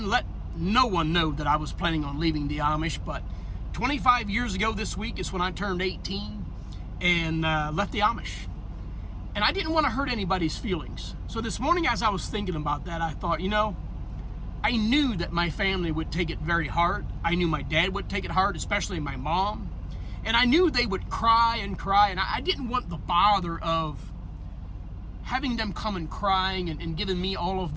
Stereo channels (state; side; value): identical; both; correlation 1.00